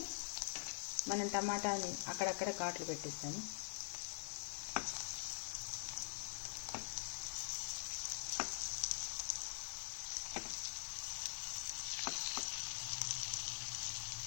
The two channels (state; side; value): silent; right; digital silence